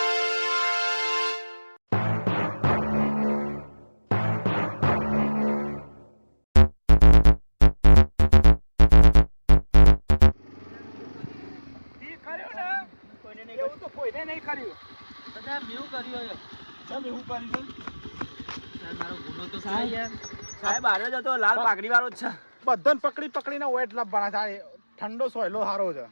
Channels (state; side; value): inverted; both; correlation -1.00